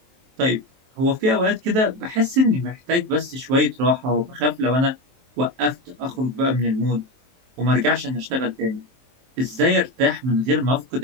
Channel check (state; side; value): late; left; 23 ms